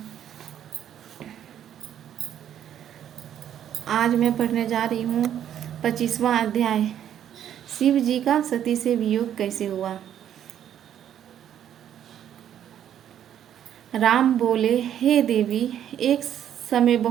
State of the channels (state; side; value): quieter; left; 10.1 dB